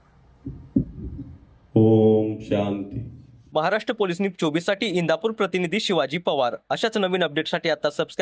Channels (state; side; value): identical; both; correlation 1.00